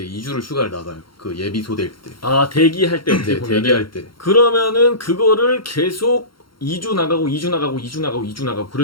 2주를 휴가를 나가요. 그 예비 소대일 때. 대기할 때 어떻게 네, 보면은 대기할 때. 그러면은 그거를 계속 2주 나가고 2주 나가고 2주 나가고 2주 나가고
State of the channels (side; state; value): right; late; 0.73 ms